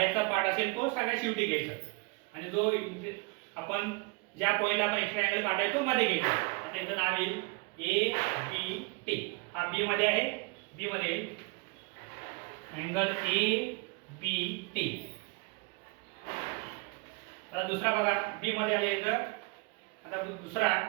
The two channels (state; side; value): quieter; left; 29.3 dB